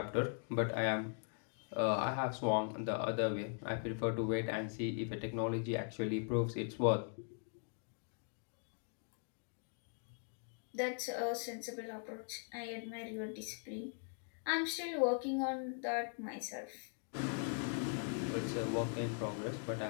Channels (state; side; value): silent; right; 51 dB below the other